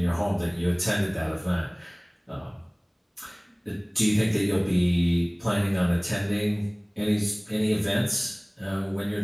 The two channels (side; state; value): both; identical; correlation 1.00